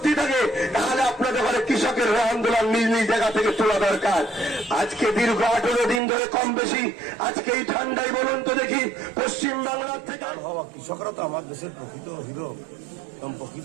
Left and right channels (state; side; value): drops out; left; at 6.0 s